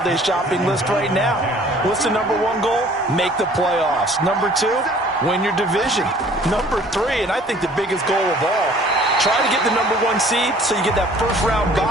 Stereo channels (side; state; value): both; normal; correlation 0.53